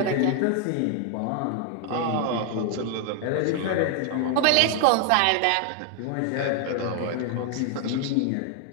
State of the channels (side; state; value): both; different; correlation 0.01